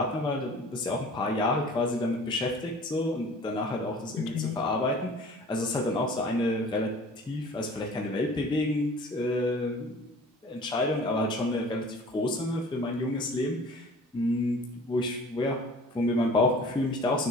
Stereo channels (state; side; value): normal; both; correlation 0.46